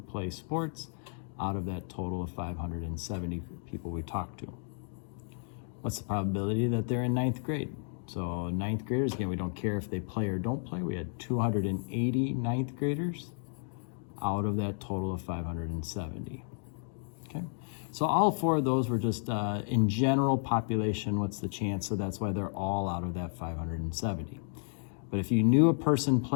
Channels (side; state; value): right; silent; 56 dB below the other